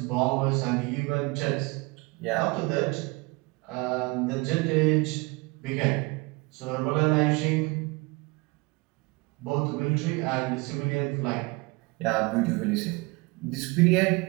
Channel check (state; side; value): quieter; left; 25.9 dB